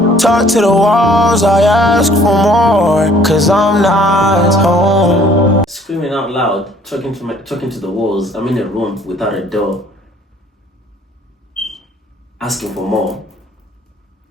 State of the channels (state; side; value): normal; both; correlation 0.57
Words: Talk to the walls, I ask for more, cause I'm not home. Screaming out loud, talking to the walls. I'm in a room without a door, asking for more